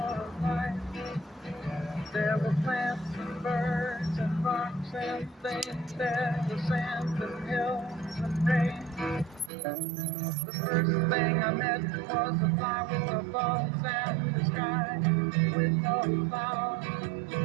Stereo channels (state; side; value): drops out; left; at 9.5 s